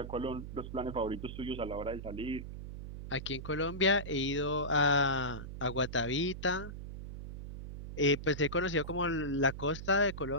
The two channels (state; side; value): noise; right; hum, 9 dB below the sound